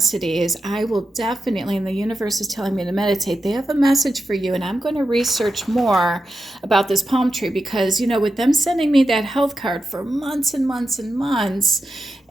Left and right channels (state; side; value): normal; both; correlation 0.89